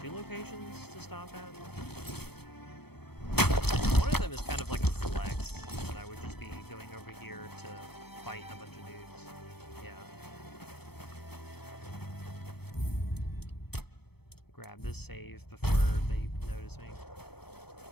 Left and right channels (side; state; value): right; late; 0.97 ms